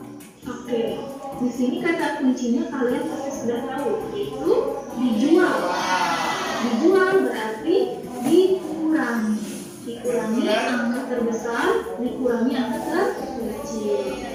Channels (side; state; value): both; identical; correlation 1.00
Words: Oke, di sini kata kuncinya kalian pasti sudah tahu, yaitu dijual. Dijual berarti dikurangi. Dikurangi angka terbesar, dikurangi angka terkecil.